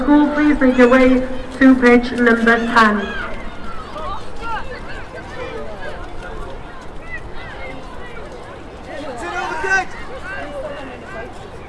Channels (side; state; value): both; identical; correlation 1.00